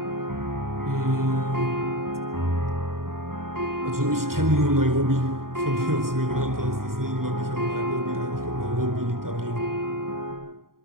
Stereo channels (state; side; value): late; left; 0.92 ms